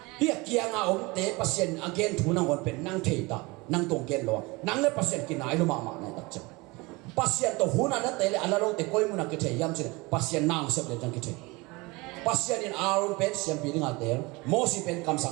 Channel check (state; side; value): quieter; left; 24.4 dB